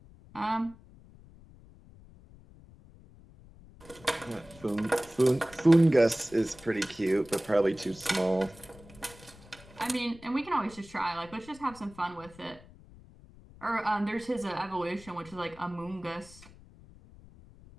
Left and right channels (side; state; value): left; noise; rumble, 22 dB below the sound